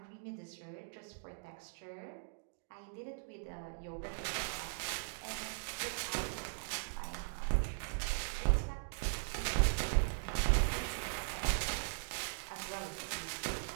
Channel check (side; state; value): left; silent; digital silence